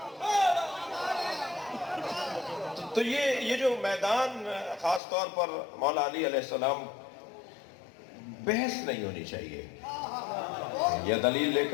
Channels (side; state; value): right; drops out; at 5.0 s